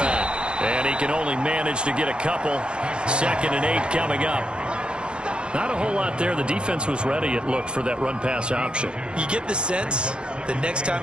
And he can only manage to get a couple. 2nd and 8 coming up. Not a whole lot there. The defense was ready, it looked, for that run-pass option. You get the sense that next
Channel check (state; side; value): late; left; 0.054 ms